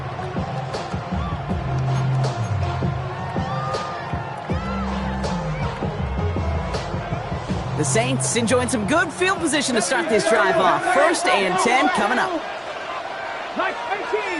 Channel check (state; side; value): identical; both; correlation 1.00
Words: The Saints enjoying some good field position to start this drive off. 1st and 10 coming up. Like